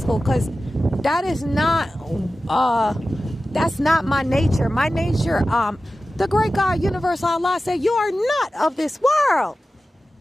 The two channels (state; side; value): normal; both; correlation 0.95